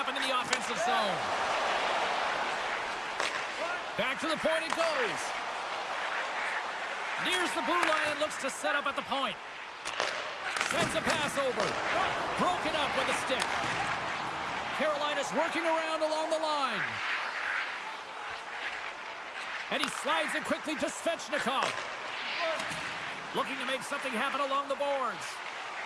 in the offensive zone. Back to the point it goes. Nears the blue line and looks to set up at the point. Sends a pass over. Broken up with a stick. Carolina's working around along the line. And he slides it quickly to Svechnikov. Looking to make something happen along the boards.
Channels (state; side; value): identical; both; correlation 1.00